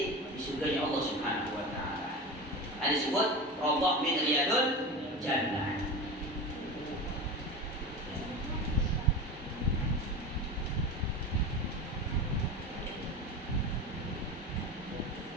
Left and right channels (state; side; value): normal; both; correlation 0.27